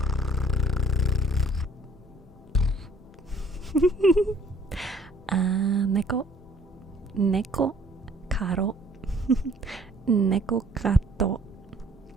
Neko, caro, neko gato.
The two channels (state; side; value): normal; both; correlation 0.58